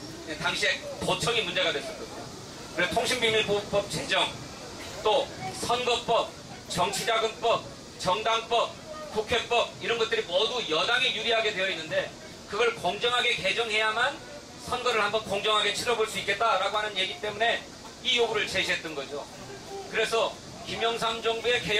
당시에 도청이 문제가 됐었거든요. 그래서 통신비밀보호법 제정, 또 선거법, 정치자금법, 정당법, 국회법, 이런 것들이 모두 여당에 유리하게 되어 있는데, 그걸 공정하게 개정해야만 선거를 한번 공정하게 치러볼 수 있겠다라고 하는 얘기 때문에 이 요구를 제시했던 거죠. 그래서 김영삼 정부의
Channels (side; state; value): both; identical; correlation 1.00